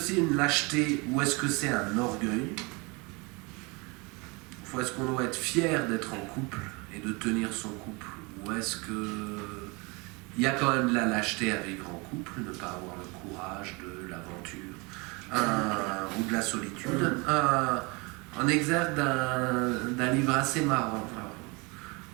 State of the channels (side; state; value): left; quieter; 28.1 dB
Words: une lâcheté ou est-ce que c'est un orgueil? Ou est-ce qu'on doit être fier d'être en couple et de tenir son couple? Ou est-ce qu'il y a quand même de la lâcheté à vivre en couple, ne pas avoir le courage de l'aventure ou de la solitude? En exergue d'un livre assez marrant.